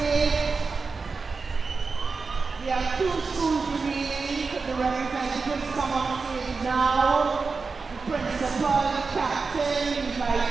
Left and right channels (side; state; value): left; quieter; 4.5 dB